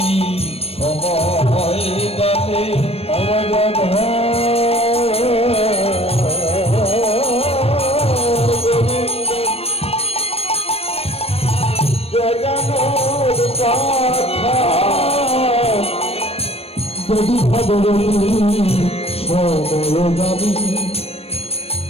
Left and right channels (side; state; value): right; late; 0.29 ms